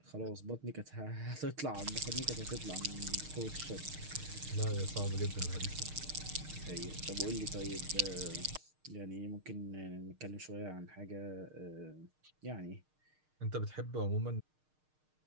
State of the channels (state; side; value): late; left; 6.5 ms